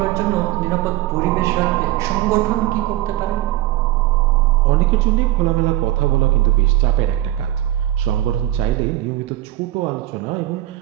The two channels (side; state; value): left; quieter; 15.0 dB